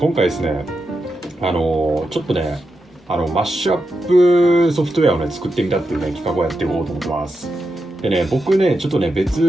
回ですね、ちょっとね、マッシュアップソフトウェアをね、作ってみたっていうね、企画をやっていこうと思ってます。でね、僕ね、ちょっとね、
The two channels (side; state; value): both; normal; correlation 0.87